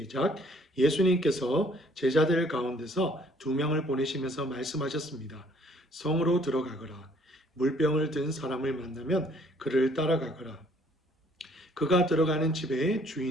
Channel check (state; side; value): normal; both; correlation 0.61